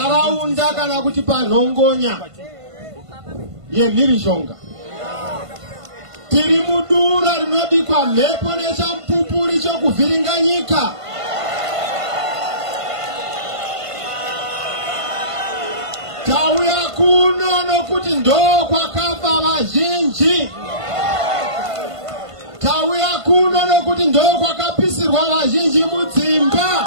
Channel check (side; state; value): left; late; 1.5 ms